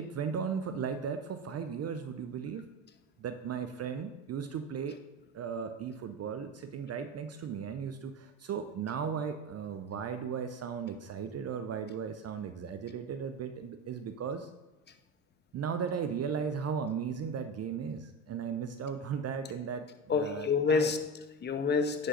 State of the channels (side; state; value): both; normal; correlation 0.23